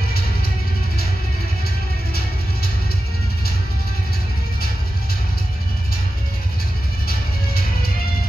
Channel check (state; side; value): normal; both; correlation 0.93